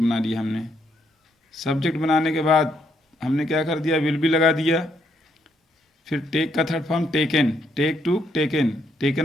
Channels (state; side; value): normal; both; correlation 0.74